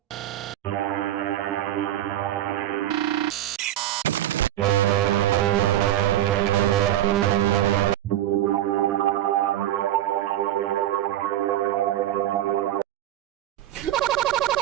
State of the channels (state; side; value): quieter; left; 12.5 dB